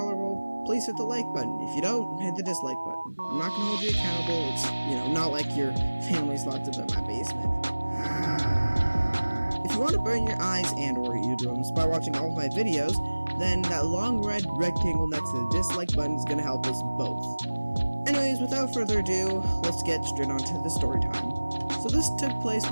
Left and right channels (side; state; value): both; inverted; correlation -1.00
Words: please hit the like button. If you don't, hit the dislike button. I'm not gonna hold you accountable. It's, not like your family's locked up in my basement. If you want to burn your eyes and or eardrums by watching all of my videos, then that long red rectangle next to the dislike button is going to help us both. Anyways, without further ado, let's get straight on to the story time. So this took place